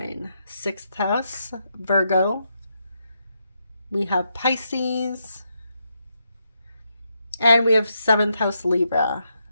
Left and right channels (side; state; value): both; inverted; correlation -0.81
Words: 6th house, Virgo. We have Pisces. And we have 7th house, Libra.